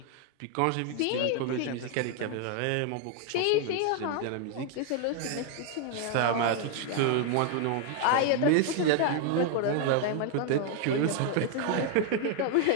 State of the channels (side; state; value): both; different; correlation 0.00